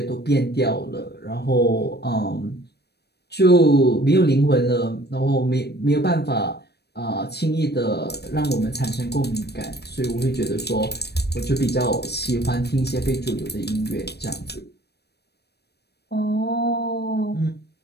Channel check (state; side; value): late; right; 0.47 ms